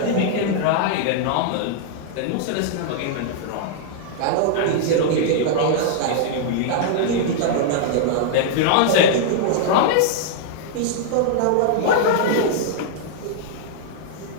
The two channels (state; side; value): different; both; correlation -0.01